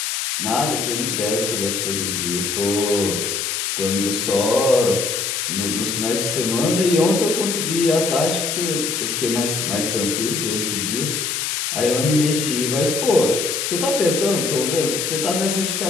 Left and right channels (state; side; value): noise; left; hiss, 1 dB below the sound